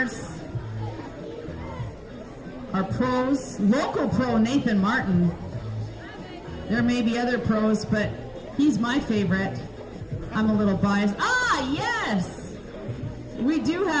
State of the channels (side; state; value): both; identical; correlation 1.00